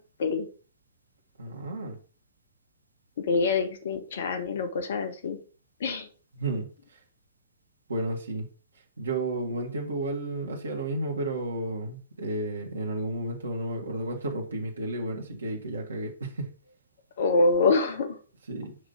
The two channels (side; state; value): both; inverted; correlation -0.53